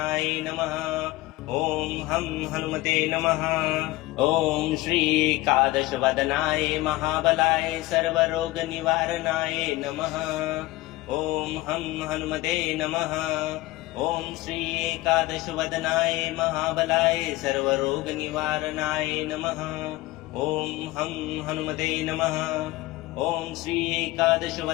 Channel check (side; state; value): right; quieter; 18.6 dB